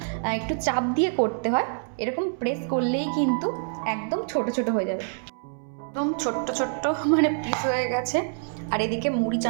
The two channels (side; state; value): left; silent; 61 dB below the other